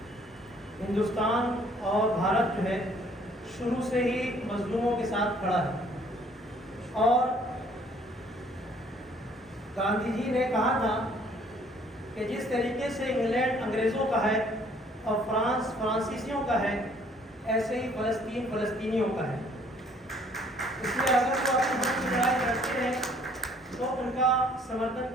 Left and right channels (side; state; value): both; normal; correlation 0.60